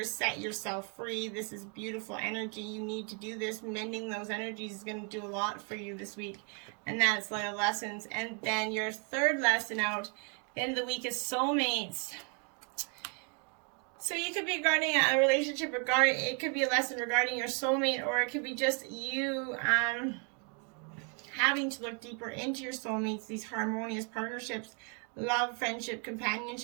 Set yourself free. This is beautiful energy. You need to do this. Mending those energies is going to do a lot for you this week. And that's Light of Lessons. And then your third lesson out, the end of the week, is soulmates. So you could be regarding a relationship, it could be a lesson regarding your soulmate, or it could be just you having to look deeper into your soulmates, these harmonious partnerships, love, friendship,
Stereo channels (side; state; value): left; quieter; 38.4 dB